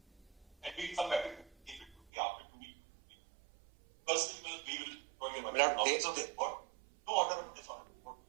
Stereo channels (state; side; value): drops out; left; at 2.0 s